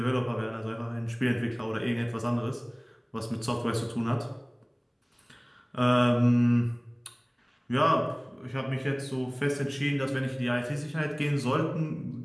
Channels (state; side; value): identical; both; correlation 1.00